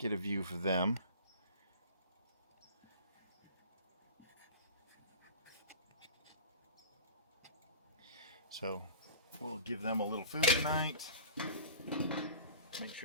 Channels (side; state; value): both; inverted; correlation -0.40